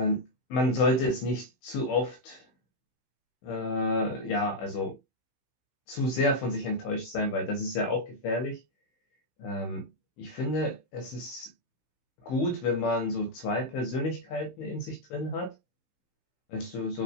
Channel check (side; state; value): right; late; 15 ms